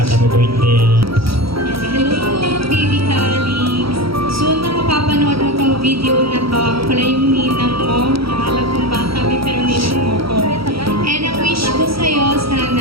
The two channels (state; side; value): late; left; 0.75 ms